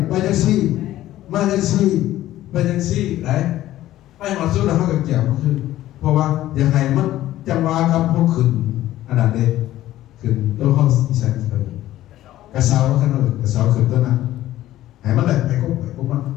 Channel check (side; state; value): right; quieter; 14.3 dB